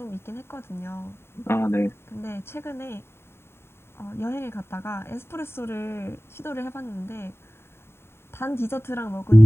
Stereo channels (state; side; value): late; right; 0.12 ms